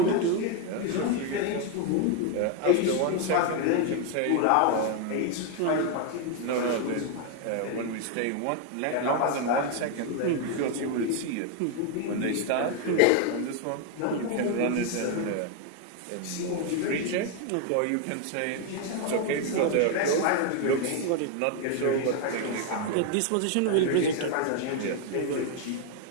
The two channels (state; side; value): different; both; correlation 0.01